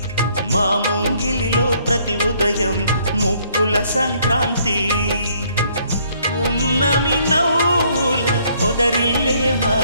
మా ముంగిలిలో ప్రతి ఉదయం ముగ్గుల సంక్రాంతి ఉన్నమి నవ్వుల పొదరిల్లే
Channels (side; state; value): both; inverted; correlation -0.65